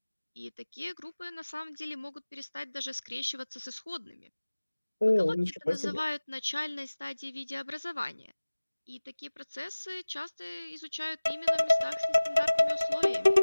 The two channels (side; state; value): both; inverted; correlation -1.00